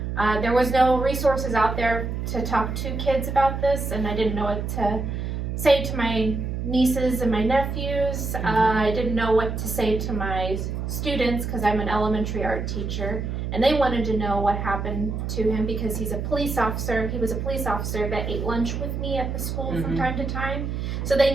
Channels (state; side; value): noise; right; hum, 3 dB below the sound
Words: there was no resources out there to talk to kids about this, and I didn't know what to say to my nieces and my nephews. I didn't know what to say to my students because I'm an elementary art teacher, and they wanted to know what happened to him because he's a police officer. He was a police officer that ate lunch with me at the school from time to time. So they